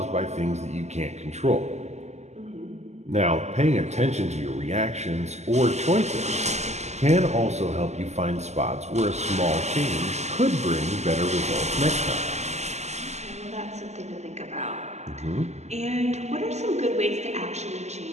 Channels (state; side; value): late; left; 0.33 ms